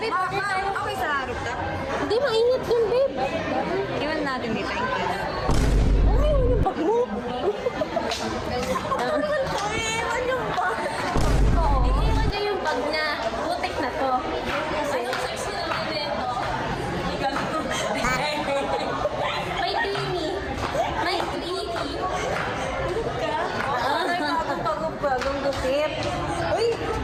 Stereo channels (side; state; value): both; identical; correlation 1.00